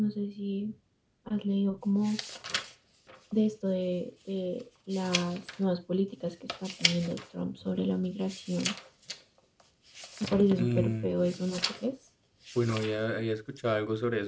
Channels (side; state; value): both; identical; correlation 1.00